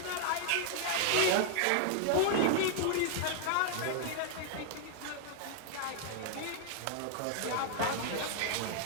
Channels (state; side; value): different; both; correlation 0.00